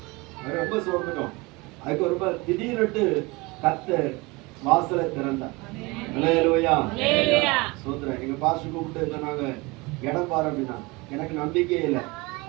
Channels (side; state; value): left; quieter; 24.6 dB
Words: ரொம்ப சோர்ந்துட்டோம். அதுக்கு ஒரு திடீர்னு கர்த்தர் வாசலை திறந்தார். அல்லேலூயா. சோத்திரம். எங்க பாஸ்டர் கூப்பிட்டு சொன்னாங்க, இடம் பாரு அப்படின்னா. எனக்கு நம்பிக்கையே இல்லை.